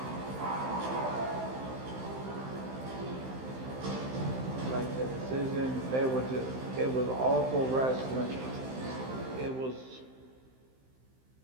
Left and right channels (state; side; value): late; left; 15 ms